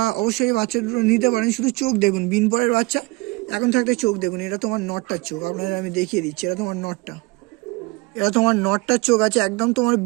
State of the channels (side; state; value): left; quieter; 24.3 dB